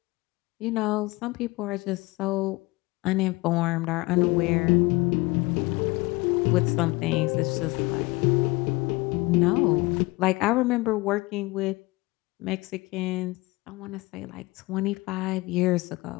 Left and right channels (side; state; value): right; quieter; 22.8 dB